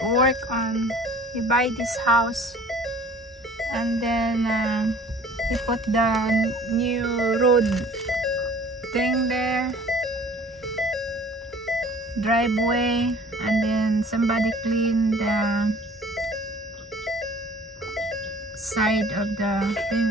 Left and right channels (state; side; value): normal; both; correlation 0.50